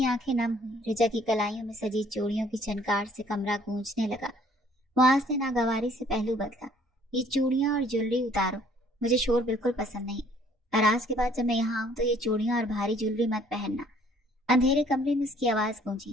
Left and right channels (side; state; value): both; normal; correlation 0.60